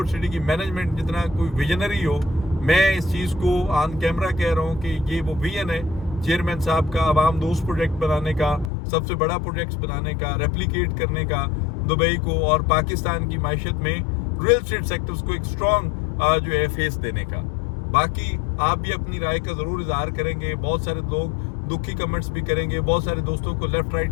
सिटी की मैनेजमेंट जितना कोई विजनरी हो, मैं इस चीज़ को ऑन कैमरा कह रहा हूँ कि ये वो विजन है चेयरमैन साहब का, आवाम दोस्त प्रोजेक्ट बनाने का, सबसे बड़ा प्रोजेक्ट बनाने का, रेप्लिकेट करने का दुबई को और पाकिस्तान की मायशत में रियल एस्टेट सेक्टर्स को एक स्ट्रॉन्ग जो है फेस देने का। बाकी आप भी अपनी राय का ज़रूर इजहार करेंगे, बहुत सारे लोग दुखी कमेंट्स भी करेंगे, बहुत सारे दोस्तों को लेफ्ट राइट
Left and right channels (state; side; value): drops out; right; at 8.7 s